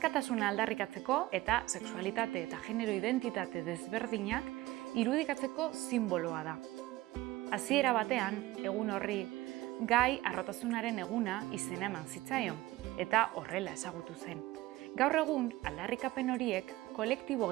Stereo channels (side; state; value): left; quieter; 17.9 dB